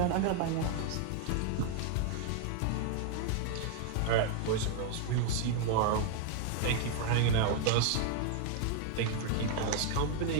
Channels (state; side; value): different; both; correlation 0.00